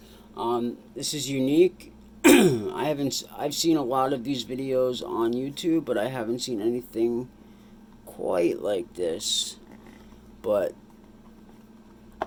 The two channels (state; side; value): identical; both; correlation 1.00